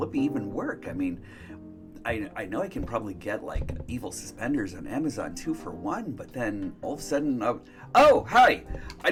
even work? I mean, I know I can probably get like evil suspenders on Amazon 2 for $1, but then all of a sudden, oh, hi! I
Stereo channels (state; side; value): identical; both; correlation 1.00